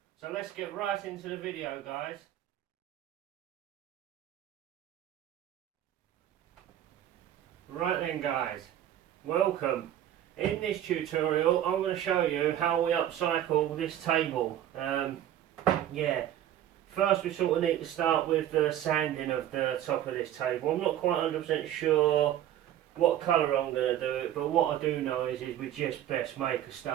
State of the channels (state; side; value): quieter; left; 11.7 dB